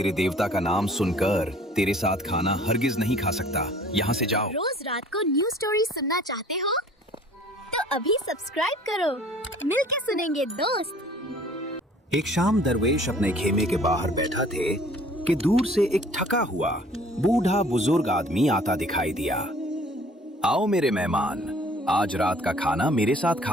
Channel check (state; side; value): normal; both; correlation 0.53